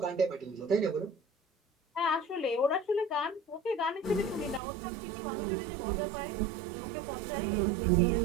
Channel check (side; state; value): left; drops out; at 4.6 s